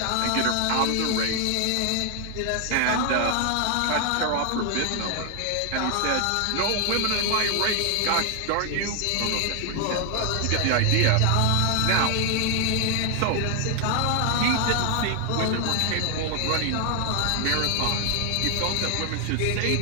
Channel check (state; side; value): different; both; correlation 0.00